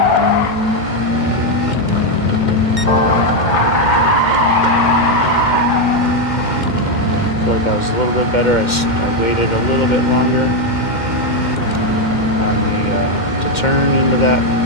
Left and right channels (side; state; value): right; late; 2.1 ms